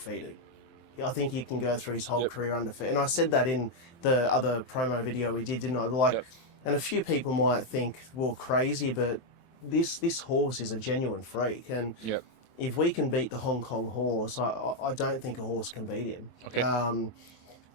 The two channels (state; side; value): late; right; 23 ms